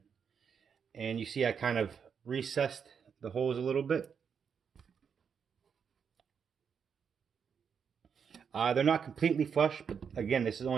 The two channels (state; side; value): quieter; left; 6.9 dB